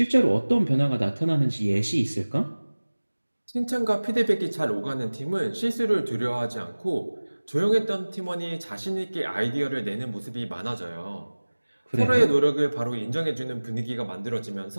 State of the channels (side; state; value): both; inverted; correlation -1.00